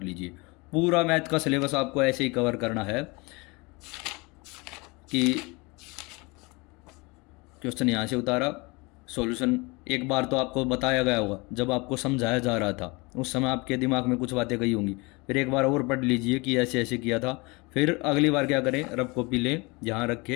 लीजिए। पूरा मैथ का सिलेबस आपको ऐसे ही कवर करना है कि क्वेश्चन यहाँ से उतारा, सॉल्यूशन एक बार तो आपको बताया गया होगा, जब आपको समझाया जा रहा था उस समय आपके दिमाग में कुछ बातें गई होंगी, फिर एक बार और पढ़ लीजिए कि ऐसे ऐसे किया था। फिर अगली बार क्या करें, रफ कॉपी लें, यहाँ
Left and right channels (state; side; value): quieter; right; 26.6 dB